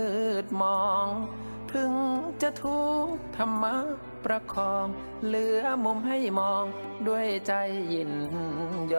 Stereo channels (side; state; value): both; inverted; correlation -1.00